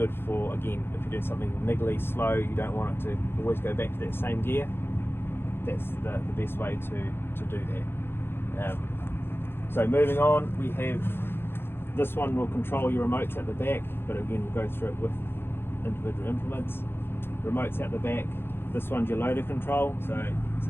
for, again, if you're doing something niggly, slow, you don't want it to always go back to that same gear. That's the best way to do that. So moving on, we have this one will control your remotes at the back, but again we'll go through it with individual implements. Remotes at the back. This one's your loader control, so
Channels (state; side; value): late; right; 0.11 ms